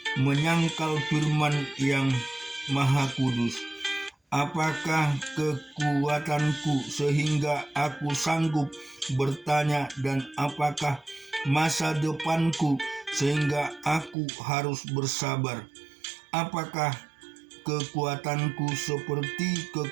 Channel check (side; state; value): left; drops out; at 14.2 s